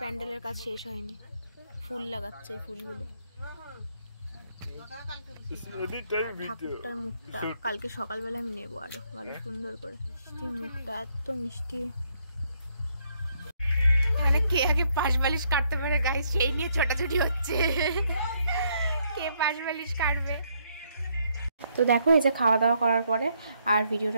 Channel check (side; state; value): both; inverted; correlation -0.73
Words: প্যান্ডেলের কাজ শেষ হয়নি, ফুল লাগাচ্ছে, এই ফুলগুলো। ঠাকুরটার মুখটা কালকে সকালবেলা আমি নেবো আরো ভালো সুন্দর করে, মিষ্টি মুখটা, এত মিষ্টি। এখানে কে আগে পাশ বালিশ কাটতে পারে গাইস, সেই নিয়ে ছোটাছুটি হচ্ছে, কে পাশ বালিশ কাটবে। তো দেখো এই যে খাওয়া দাওয়া করার পরে আর